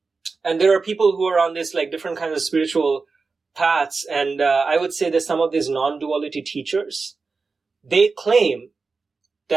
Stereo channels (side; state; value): left; quieter; 4.3 dB